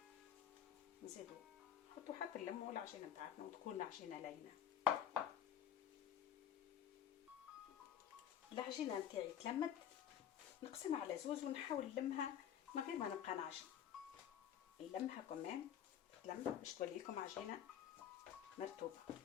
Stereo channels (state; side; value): quieter; right; 9.7 dB